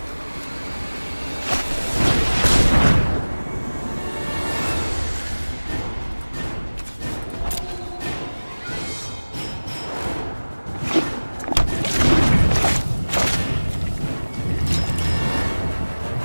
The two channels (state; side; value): inverted; both; correlation -1.00